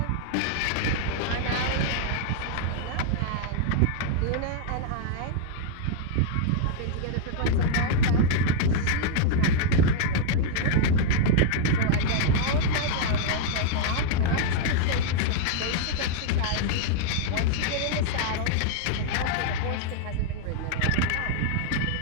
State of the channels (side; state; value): both; different; correlation -0.01